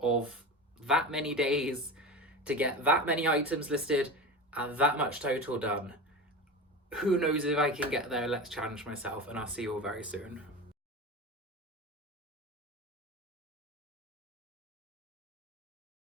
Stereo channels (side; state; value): both; normal; correlation 0.27